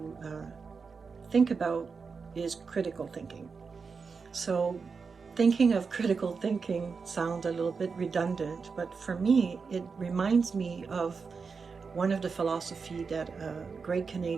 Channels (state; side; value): quieter; left; 5.1 dB